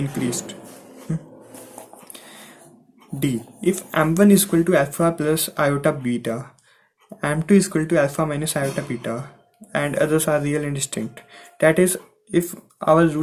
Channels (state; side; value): identical; both; correlation 1.00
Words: D. If m1 is equal to alpha plus iota beta, m2 is equal to alpha minus iota beta, and others are real and distinct. That is, if our